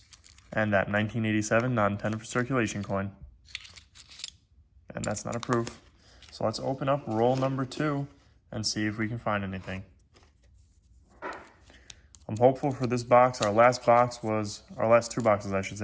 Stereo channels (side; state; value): both; identical; correlation 1.00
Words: and that 1987 not intended for circulation coin. And that's not a proof. So let's open up roll number 2 and see if we can find anything. I'm hopeful for this box. Our last 2 boxes, I should